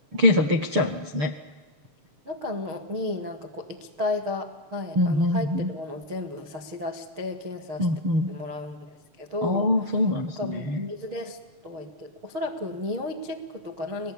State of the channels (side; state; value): left; late; 6.8 ms